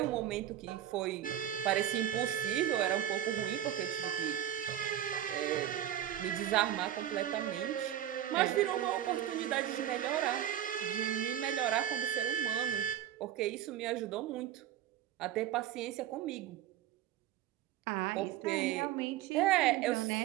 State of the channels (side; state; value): left; quieter; 11.4 dB